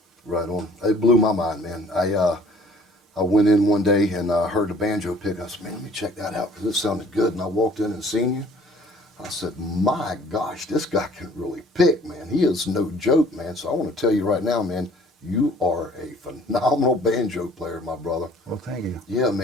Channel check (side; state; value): both; normal; correlation 0.54